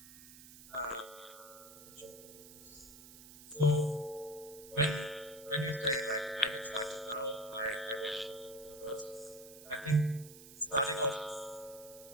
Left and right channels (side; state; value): right; noise; hiss, 17 dB below the sound